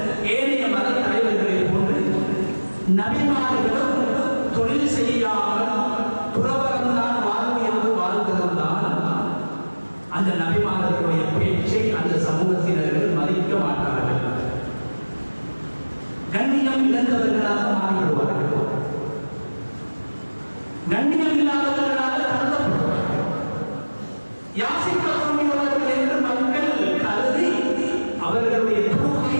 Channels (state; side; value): inverted; both; correlation -1.00